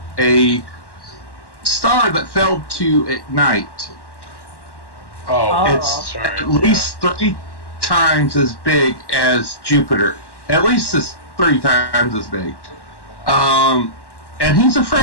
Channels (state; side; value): late; right; 1.1 ms